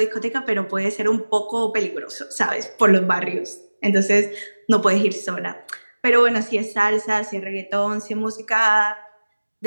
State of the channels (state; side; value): inverted; both; correlation -1.00